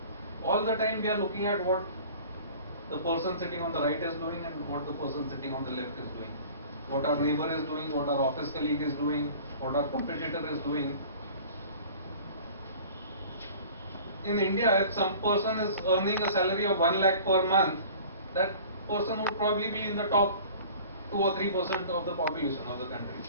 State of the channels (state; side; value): inverted; both; correlation -0.45